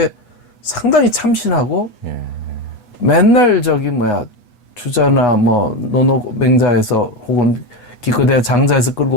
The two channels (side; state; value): right; late; 8.2 ms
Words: 상당히 참신하고 맨날 주자나 뭐 노노맹자에서 혹은 기껏해야 장자에서